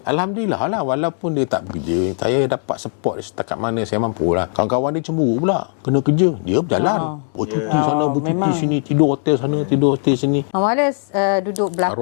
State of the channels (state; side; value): silent; right; 60 dB below the other